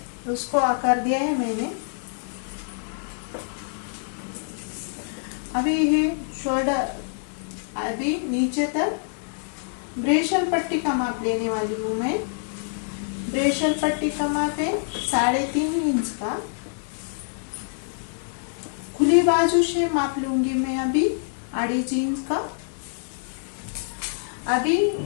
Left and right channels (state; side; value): silent; right; 61 dB below the other